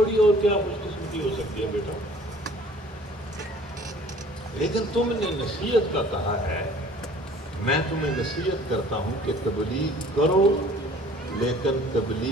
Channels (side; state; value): both; normal; correlation 0.51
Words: اور کیا خوش قسمتی ہو سکتی ہے بیٹا. لیکن تم نے نصیحت کا کہا ہے، میں تمہیں نصیحت کرتا ہوں کہ تبلیغ کرو، لیکن